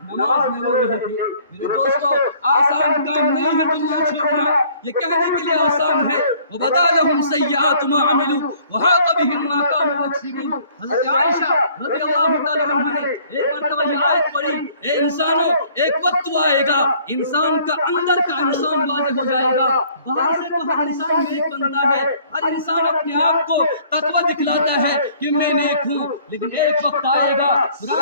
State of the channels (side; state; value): both; inverted; correlation -0.57